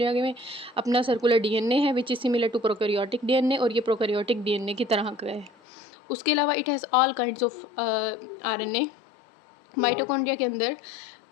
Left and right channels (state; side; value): drops out; right; at 5.5 s